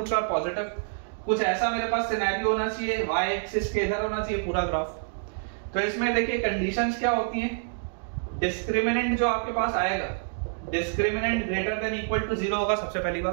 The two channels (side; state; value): left; silent; digital silence